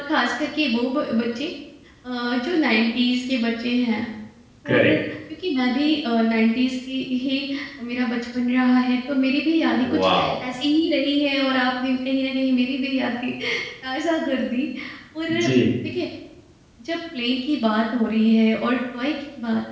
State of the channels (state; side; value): identical; both; correlation 1.00